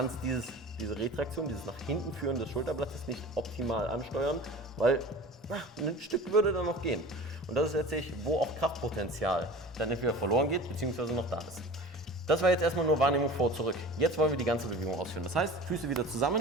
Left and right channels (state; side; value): normal; both; correlation 0.38